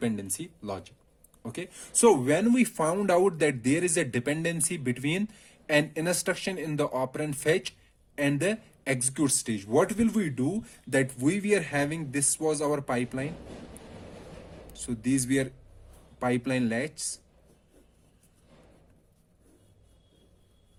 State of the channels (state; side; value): identical; both; correlation 1.00